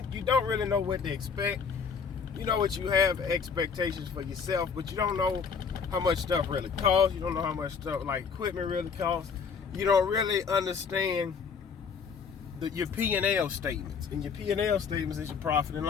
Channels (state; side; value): quieter; right; 6.0 dB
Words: really know what to expect. You know what you have expectations for yourself, but you don't know how much stuff really costs. You don't know how much stuff like equipment really costs. You don't really understand your P&L statements. And your P&L statements is your profit and